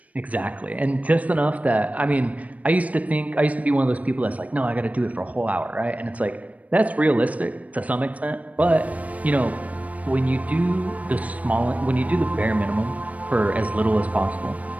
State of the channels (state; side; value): late; left; 0.069 ms